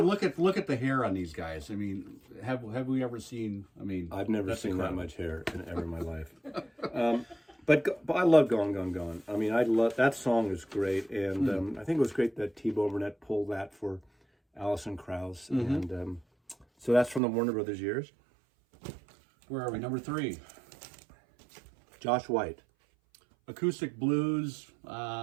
look at the hair on these guys. I mean, have we ever seen? I mean, I've never seen incredible. that much hair ever in my life. But I love Gone, Gone, Gone. I mean, I love that song is great, and I think it was great that T-Bone Burnett pulled that for Alison Krauss, and so that's from the Warner Brothers years. Where are we? Number 3. Josh White. Acoustic blues.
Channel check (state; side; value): drops out; left; at 17.2 s